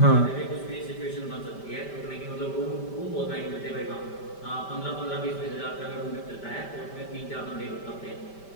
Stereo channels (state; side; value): late; right; 5.1 ms